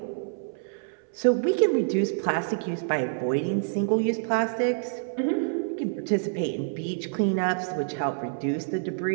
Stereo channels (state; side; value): silent; left; 60 dB below the other